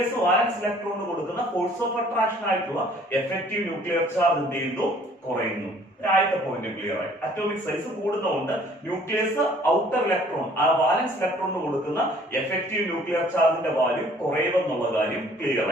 വാലൻസ് ഇലക്ട്രോണിന് കൊടുക്കുന്ന ഫോഴ്സ് ഓഫ് അട്രാക്ഷൻ ആയിട്ടുള്ള എഫക്റ്റീവ് ന്യൂക്ലിയർ ചാർജ് എന്ത് ചെയ്യുന്നു, കുറയുന്നു. ആദ്യത്തെ പോയിന്റ് ക്ലിയർ ആയി. അറ്റോമിക് സൈസ് കൂടുന്നതുകൊണ്ട് ന്യൂക്ലിയസ് ഔട്ടർ ഇലക്ട്രോൺ ആ വാലൻസ് ഇലക്ട്രോണിന് കൊടുക്കുന്ന എഫക്റ്റീവ് ന്യൂക്ലിയർ ചാർജിന്റെ വാല്യൂ കുറയുമെന്നുള്ള കാര്യം ക്ലിയർ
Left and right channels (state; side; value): normal; both; correlation 0.56